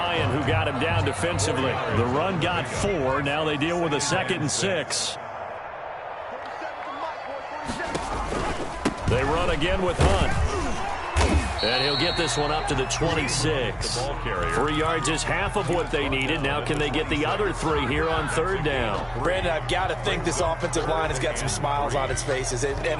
who got him down defensively. The run got 4. Now they deal with a 2nd and 6. They run again with Hunt. And he'll get this one up to the 26. 3 yards is half of what they needed. Now can they get the other 3 here on 3rd down? Brandon, I've got to think this offensive line has got some smiles on its faces.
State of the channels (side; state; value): both; identical; correlation 1.00